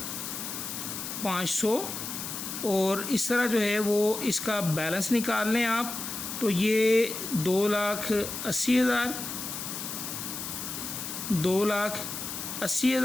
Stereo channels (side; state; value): left; noise; hiss, 6 dB below the sound